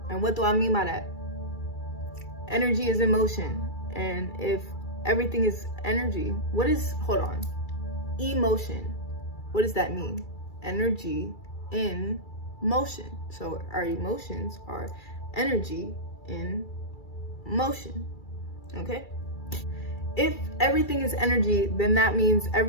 And what do I mean by that? Energy is emotion. And if everything is energy, what is, hold on, emotion? What does that mean? Energy in motion. So our emotions are energy in motion, okay? If everything is energy, then that means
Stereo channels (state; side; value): late; right; 2.3 ms